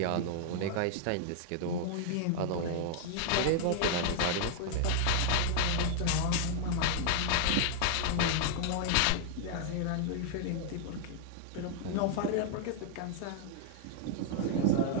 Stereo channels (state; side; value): different; both; correlation 0.00